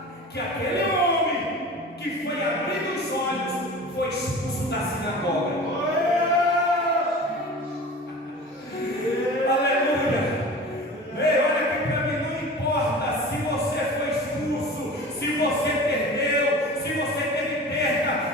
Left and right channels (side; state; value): both; normal; correlation 0.37